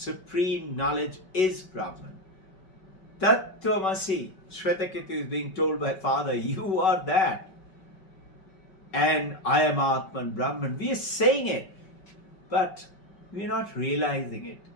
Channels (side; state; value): right; late; 5.3 ms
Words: knowledge is Brahman. Tattvamasi, Shvetaketu is being told by Father, you are that. And I am Atman Brahman. We are saying it, but we are not realizing it.